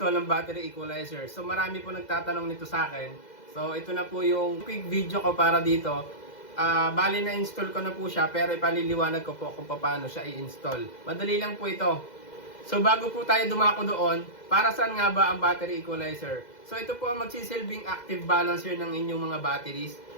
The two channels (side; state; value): right; late; 2.0 ms